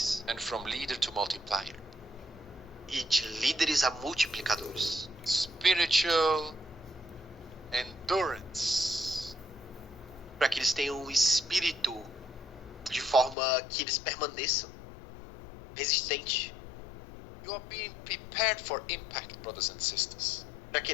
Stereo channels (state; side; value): drops out; right; at 13.4 s